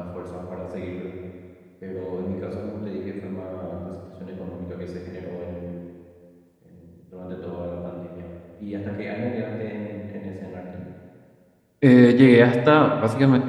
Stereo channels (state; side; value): identical; both; correlation 1.00